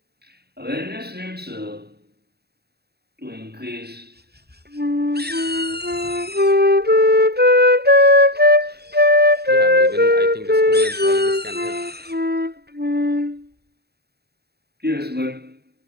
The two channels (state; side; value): late; left; 0.47 ms